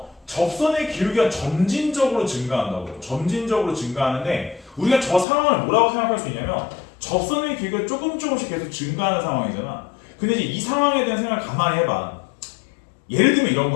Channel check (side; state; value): right; drops out; at 5.2 s